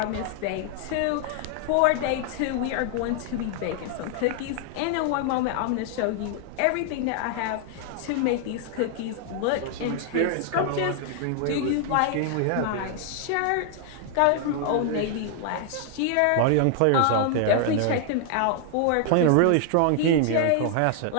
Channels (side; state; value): both; different; correlation 0.00